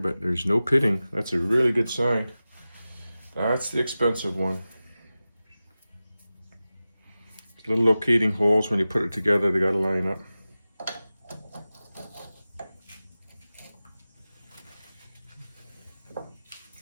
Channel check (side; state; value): both; inverted; correlation -0.96